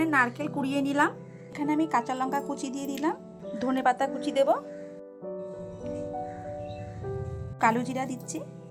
নারকেল কুড়িয়ে নিলাম। এখানে আমি কাঁচা লঙ্কা কুচি দিয়ে দিলাম, ধনেপাতা কুচি দেব, কালো জিরা দিচ্ছি,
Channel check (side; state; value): both; identical; correlation 1.00